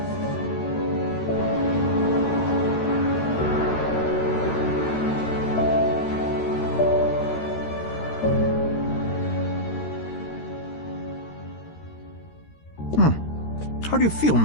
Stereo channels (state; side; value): late; right; 13 ms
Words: How do you feel,